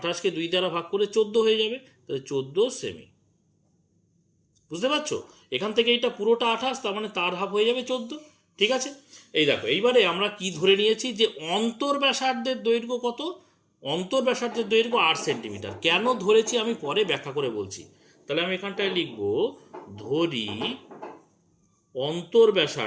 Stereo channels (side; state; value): both; identical; correlation 1.00